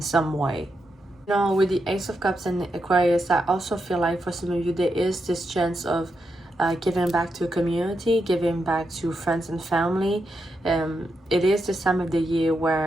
some way. With the Ace of Cups and Aquarius, I also feel like for some of you, there is this chance of giving back to a community, giving back to friends and family. It is this time of the year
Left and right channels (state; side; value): normal; both; correlation 0.84